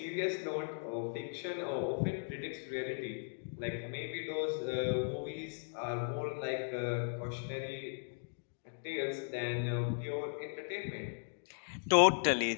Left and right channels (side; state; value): right; silent; digital silence